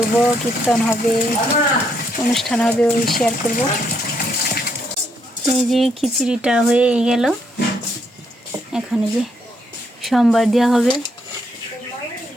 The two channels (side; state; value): both; normal; correlation 0.74